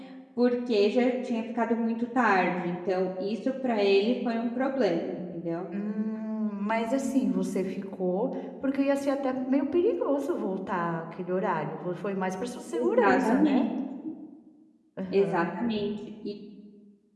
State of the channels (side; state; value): both; identical; correlation 1.00